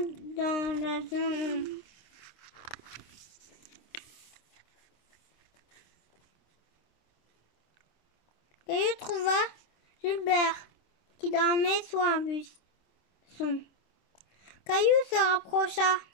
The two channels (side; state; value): right; late; 26 ms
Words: dans la jungle. Caillou trouva Gilbert qui dormait sous un buisson. Caillou se rapprocha.